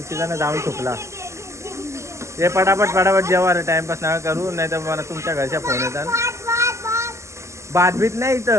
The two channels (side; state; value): left; late; 0.14 ms